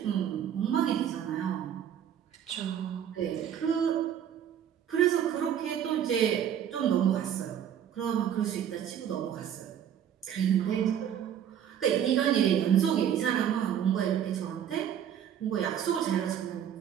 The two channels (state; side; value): quieter; left; 9.5 dB